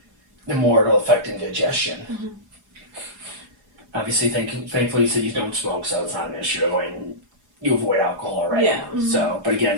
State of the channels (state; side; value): late; left; 4.8 ms